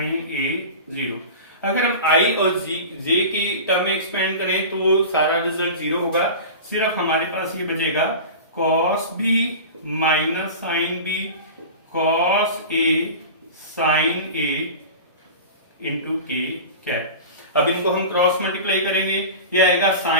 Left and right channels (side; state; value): both; inverted; correlation -0.32